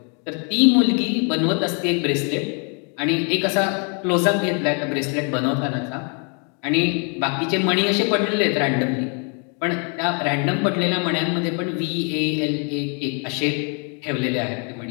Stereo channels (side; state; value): right; quieter; 37.5 dB